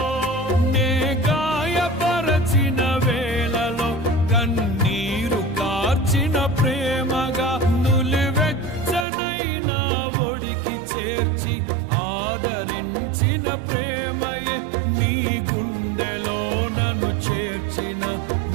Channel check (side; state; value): left; drops out; at 9.1 s